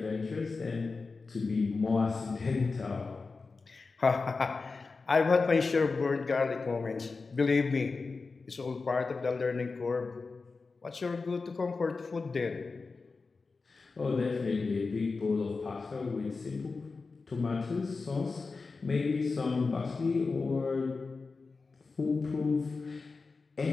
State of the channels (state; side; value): quieter; right; 4.2 dB